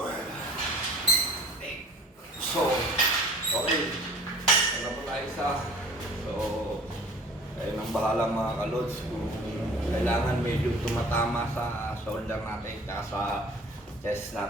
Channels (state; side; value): normal; both; correlation 0.47